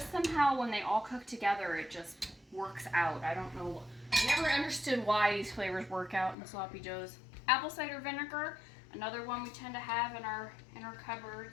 somehow, when they all cook together, it just works out. I don't know. I never understood why these flavors work out in the sloppy joes. Apple cider vinegar. Another one we tend to have in our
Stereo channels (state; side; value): drops out; right; at 6.4 s